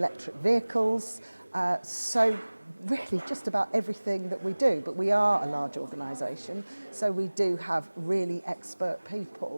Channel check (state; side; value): inverted; both; correlation -1.00